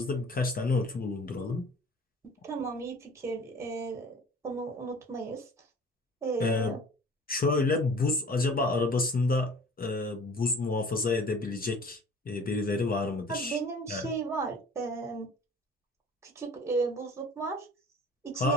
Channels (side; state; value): both; normal; correlation 0.47